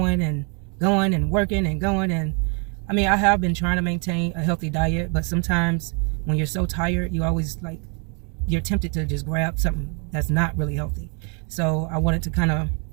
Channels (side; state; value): left; quieter; 36.8 dB